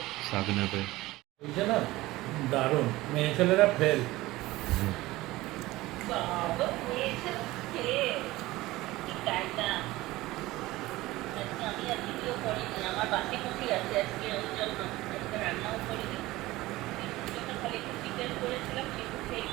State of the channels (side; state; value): left; quieter; 18.5 dB